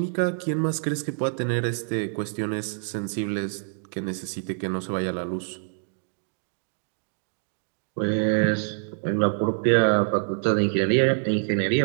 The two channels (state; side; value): silent; left; 61 dB below the other